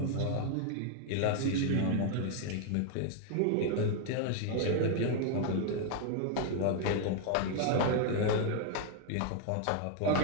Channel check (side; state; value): both; different; correlation 0.00